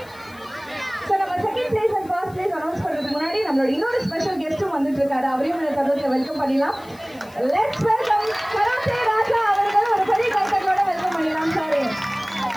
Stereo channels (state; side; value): noise; left; hiss, 25 dB below the sound